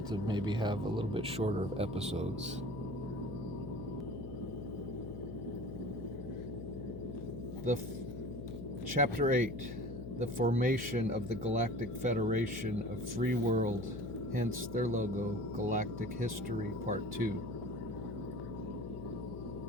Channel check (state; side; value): noise; left; hum, 9 dB below the sound